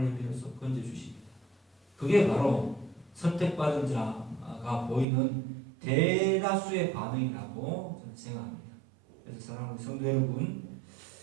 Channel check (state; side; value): drops out; left; at 5.1 s